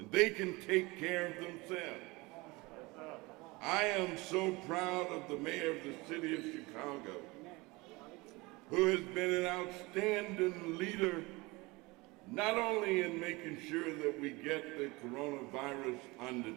they can take care of themselves. I am so proud of the mayor of the city of Chicago, who has been an outstanding leader, not only in making sure that we get the coronavirus under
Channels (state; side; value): quieter; left; 23.7 dB